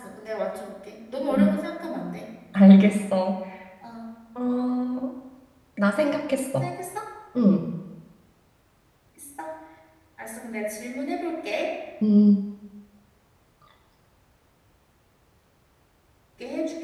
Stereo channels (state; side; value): identical; both; correlation 1.00